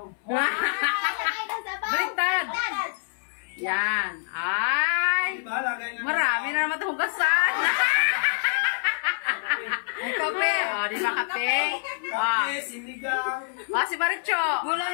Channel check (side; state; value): right; silent; 58 dB below the other